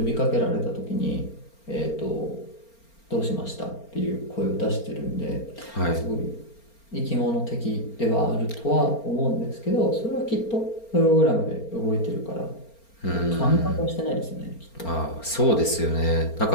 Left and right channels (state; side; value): late; right; 4.3 ms